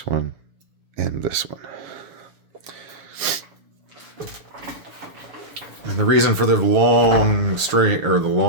one and this one. And the reason for the long string or the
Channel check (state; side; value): late; left; 7.4 ms